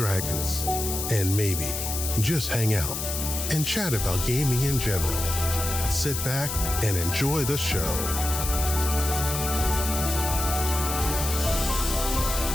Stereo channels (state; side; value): noise; left; hiss, 4 dB below the sound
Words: And maybe just hang out and chat about gaming in general. Sit back and enjoy the show.